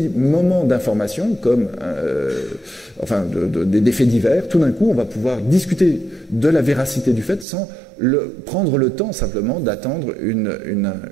moments d'information, comme des faits divers, tout d'un coup, on va pouvoir discuter de la véracité du fait sans prendre le temps simplement d'attendre une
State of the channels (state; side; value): drops out; left; at 7.5 s